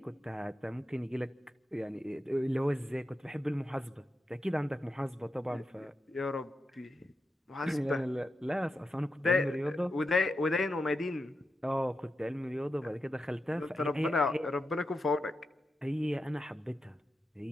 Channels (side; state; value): both; normal; correlation 0.88